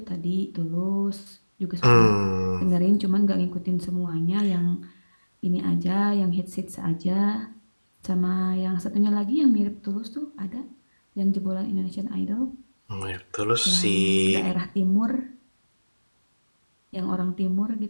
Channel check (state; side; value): inverted; both; correlation -1.00